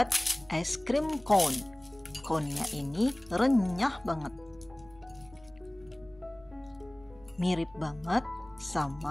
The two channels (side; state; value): right; noise; hum, 26 dB below the sound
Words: es krim cone. Cone-nya ini renyah banget. Mirip banget